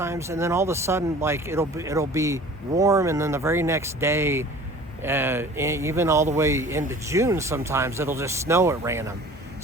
And then all of a sudden, like, it'll be warm, and then the very next day, even all the way into June, sometimes it'll just snow at random.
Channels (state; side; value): normal; both; correlation 0.45